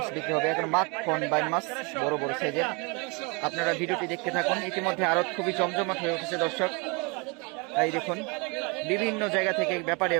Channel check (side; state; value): left; quieter; 30.5 dB